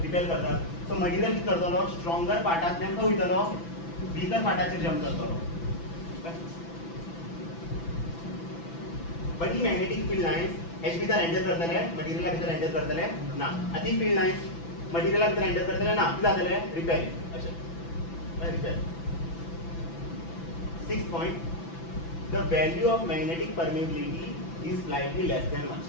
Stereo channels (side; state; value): right; late; 6.0 ms